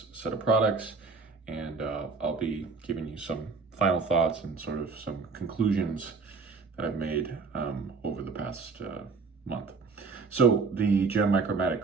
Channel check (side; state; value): left; quieter; 4.6 dB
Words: set of products, and I'll be giving you some final thoughts and sort of some conclusions that I've made over the past month. So the Gem